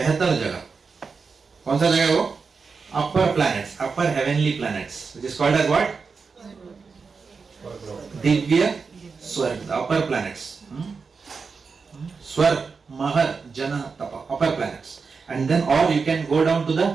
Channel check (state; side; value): quieter; left; 5.0 dB